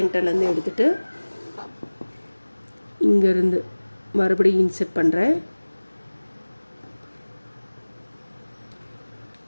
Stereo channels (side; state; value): both; inverted; correlation -1.00